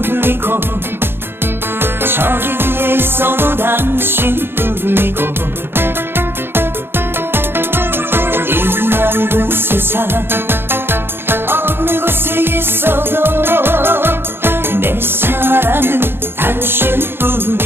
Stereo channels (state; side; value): late; left; 0.11 ms